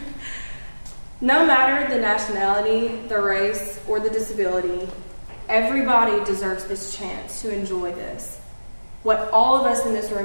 No matter the nationality, the race, or the disability, everybody deserves this chance to enjoy this. What all of us in this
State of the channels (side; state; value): both; inverted; correlation -1.00